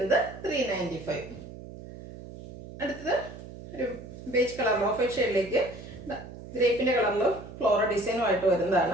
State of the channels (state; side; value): noise; right; hum, 14 dB below the sound